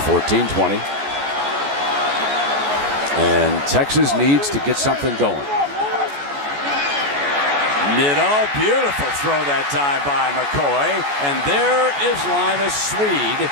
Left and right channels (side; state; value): left; late; 14 ms